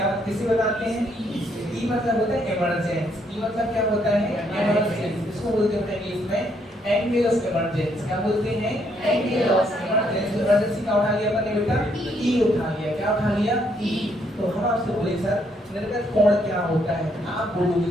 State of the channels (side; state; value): both; normal; correlation 0.72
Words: किसे बताते हैं? ई से। ई मतलब होता है इमरजेंस। ई मतलब क्या होता है? इमरजेंस। इसको बोलते हैं इंग्लिश में एंगल ऑफ इमरजेंसी। क्या बोलते हैं? Angle of emergency. इमरजेंसी का उठा लिया अपने बेटा? ई उठा लिया। क्या उठा लिया? ई। तो हम आपसे बोले सर निर्गत कोण क्या होता है? आप बोलोगे